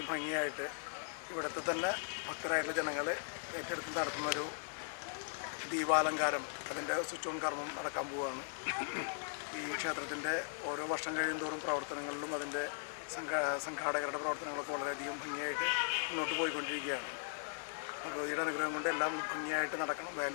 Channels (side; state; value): right; silent; 52 dB below the other